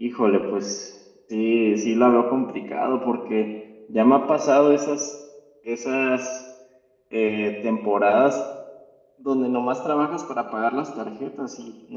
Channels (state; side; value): identical; both; correlation 1.00